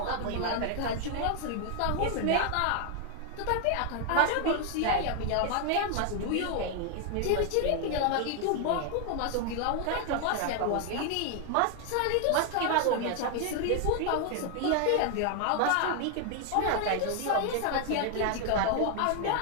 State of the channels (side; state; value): both; different; correlation 0.00